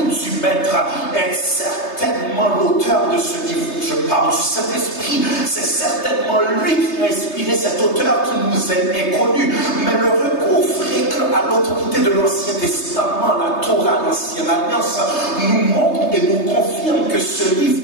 du Maître est certainement l'auteur de ce livre. Je parle du Saint-Esprit, c'est certainement lui qui a inspiré cet auteur qui nous est inconnu. Mais le recours fréquent à l'autorité de l'Ancien Testament, la Torah, l'Ancienne Alliance, nous montre et nous confirme que ce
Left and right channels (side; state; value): right; late; 3.3 ms